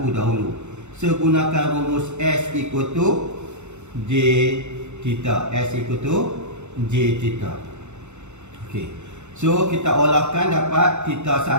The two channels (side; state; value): left; late; 0.83 ms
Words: dahulu. So gunakan rumus S equal to J theta. S equal to J theta. Okey. So kita olahkan dapat theta